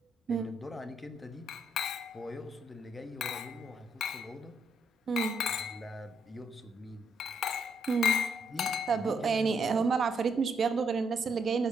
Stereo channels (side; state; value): both; normal; correlation 0.74